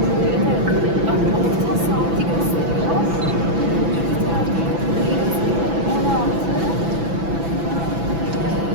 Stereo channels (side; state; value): left; late; 6.0 ms